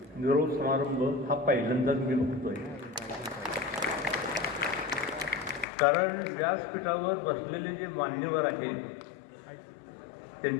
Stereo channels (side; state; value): right; drops out; at 5.7 s